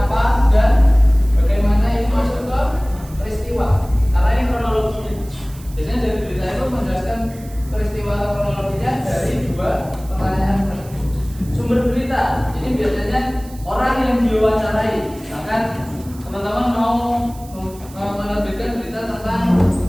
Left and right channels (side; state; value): right; noise; hiss, 22 dB below the sound